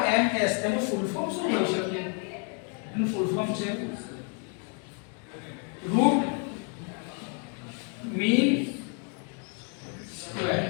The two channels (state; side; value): quieter; right; 38.6 dB